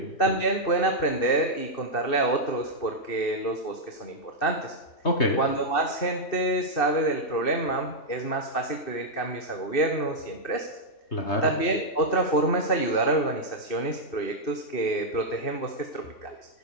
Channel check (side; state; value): right; late; 2.7 ms